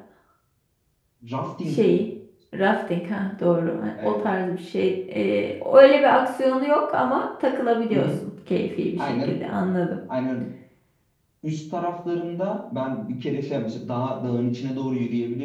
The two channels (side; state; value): both; identical; correlation 1.00